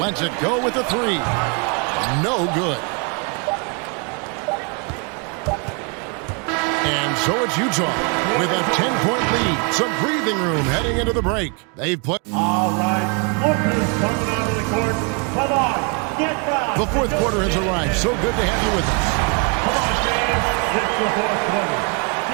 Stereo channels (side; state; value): left; quieter; 34.7 dB